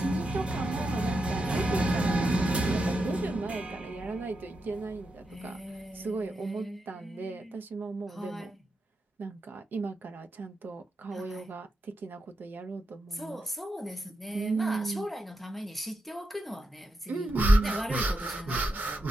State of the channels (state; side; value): normal; both; correlation 0.86